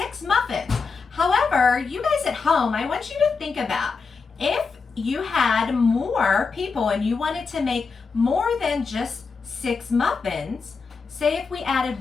muffins. However, you guys at home, I want you to think about if you had more people and you wanted to make more than just 6 muffins, say if we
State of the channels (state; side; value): quieter; right; 4.9 dB